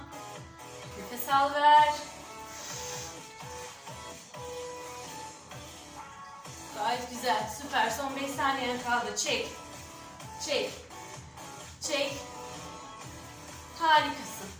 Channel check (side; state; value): both; identical; correlation 1.00